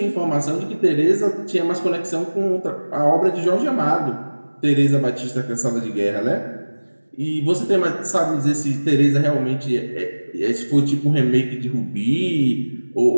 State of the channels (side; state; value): both; inverted; correlation -1.00